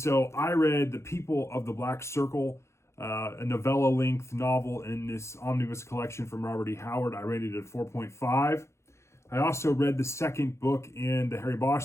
I read The People of the Black Circle, a novella-length novel in this omnibus collection from Robert E. Howard. I rated it at 4.5. I also read the second book in the Harry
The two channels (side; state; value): right; late; 0.13 ms